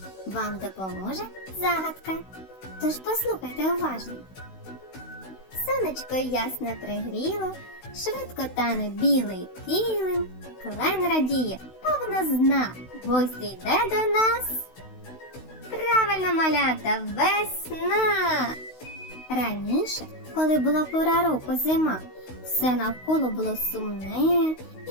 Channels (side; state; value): right; late; 16 ms